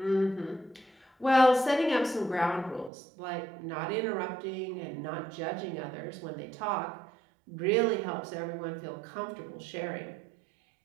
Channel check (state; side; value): drops out; left; at 2.9 s